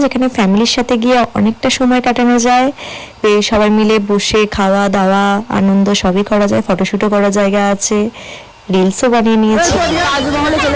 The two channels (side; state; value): both; identical; correlation 1.00